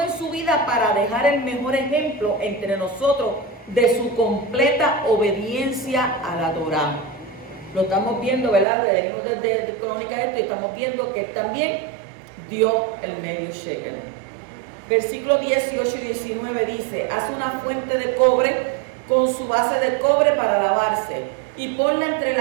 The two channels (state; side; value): drops out; left; at 8.7 s